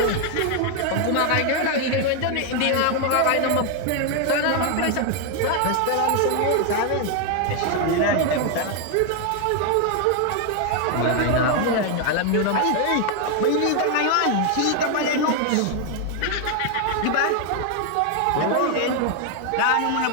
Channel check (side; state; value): both; different; correlation 0.01